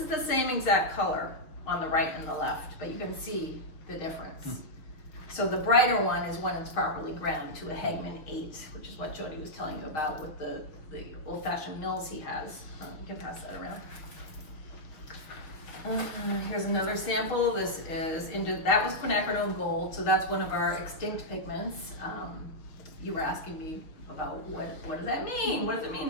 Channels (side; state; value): right; late; 6.2 ms